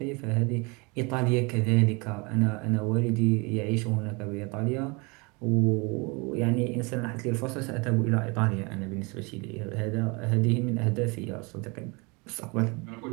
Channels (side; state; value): left; quieter; 28.6 dB